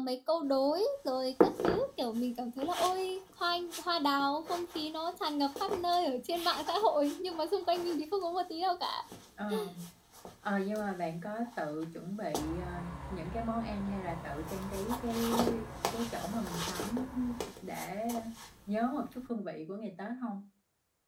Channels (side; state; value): both; identical; correlation 1.00